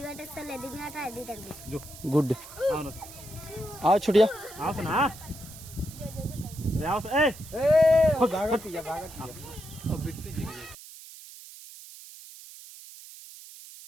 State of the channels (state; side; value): noise; right; hiss, 16 dB below the sound